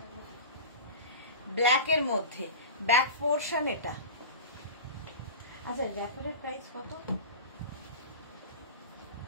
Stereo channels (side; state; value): both; inverted; correlation -0.31